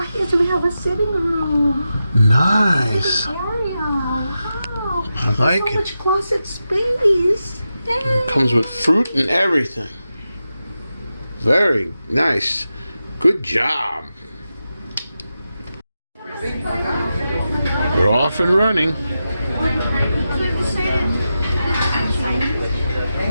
is we have a sitting room. Nice. Sitting area. Wow. I like so it. much closet space. Yay. It comes with fruit and everything. Very nice. Good job. We're off and running.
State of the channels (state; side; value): inverted; both; correlation -0.90